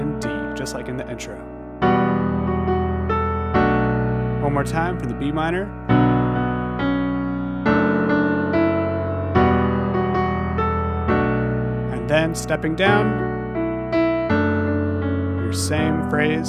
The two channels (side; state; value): both; identical; correlation 1.00